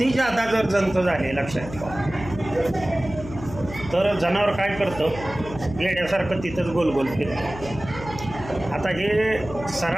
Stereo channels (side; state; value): left; noise; hum, 13 dB below the sound